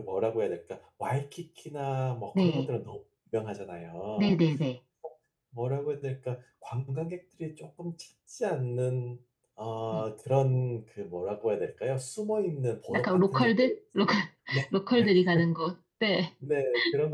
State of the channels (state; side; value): identical; both; correlation 1.00